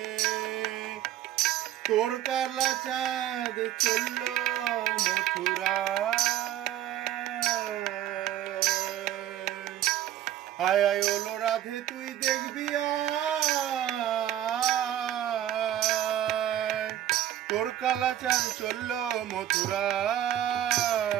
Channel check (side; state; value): left; quieter; 12.2 dB